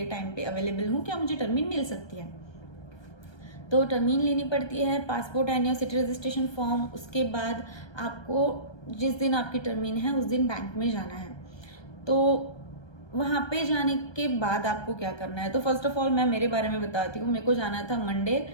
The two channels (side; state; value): right; late; 1.2 ms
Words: टाइम पे अवेलेबल हूँ, क्या मुझे टर्मीन मिल सकती है। तो टर्मीन लेनी पड़ती है, passport and your city registration form. उसके बाद आपको जिस दिन आपकी टर्मीन है उस दिन बैंक में जाना है। तो वहाँ पे जाने के बाद आपको क्या करना है, तो फर्स्ट ऑफ ऑल मैं मेरे बारे में बताती हूँ। मेरे को जाना था मंडे।